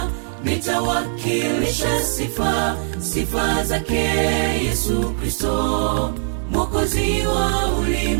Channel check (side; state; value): left; silent; digital silence